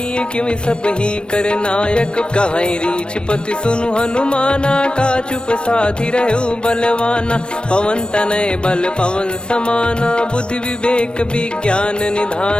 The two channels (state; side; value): late; right; 0.055 ms